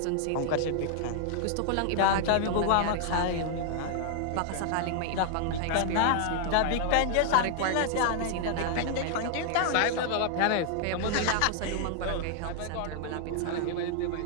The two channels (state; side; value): different; both; correlation 0.00